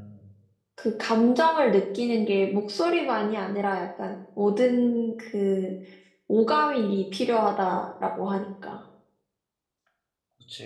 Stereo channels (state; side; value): identical; both; correlation 1.00